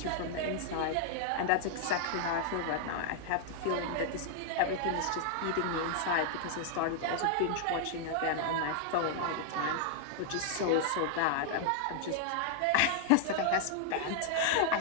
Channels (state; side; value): different; both; correlation -0.01